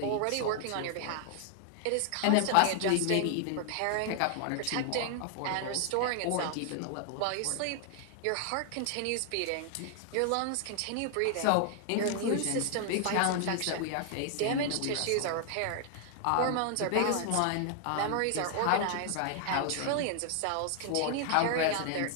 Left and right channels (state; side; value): different; both; correlation 0.00